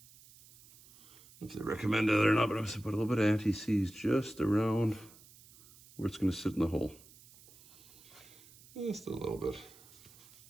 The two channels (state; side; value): noise; right; hiss, 23 dB below the sound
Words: if they recommend it or not, but I'm just gonna put a little bit of anti-seize just around where it's gonna sit in the hole. Just a little bit.